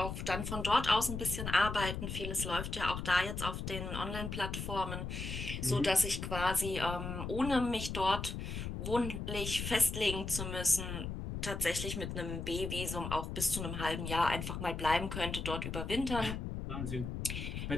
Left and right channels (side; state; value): left; noise; rumble, 5 dB below the sound